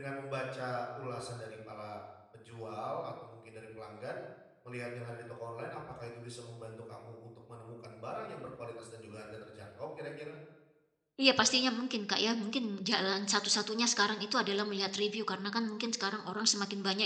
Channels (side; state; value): both; identical; correlation 1.00